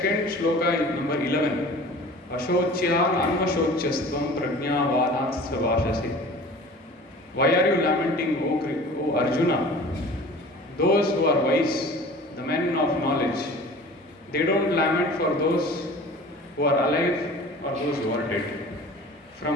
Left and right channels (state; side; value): normal; both; correlation 0.43